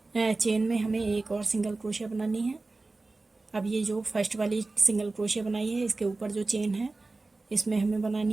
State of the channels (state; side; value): quieter; left; 3.4 dB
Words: चेन में हमें एक और सिंगल क्रोशिया बनानी है। अब ये जो फर्स्ट वाली सिंगल क्रोशिया बनाई है इसके ऊपर जो चेन है इसमें हमें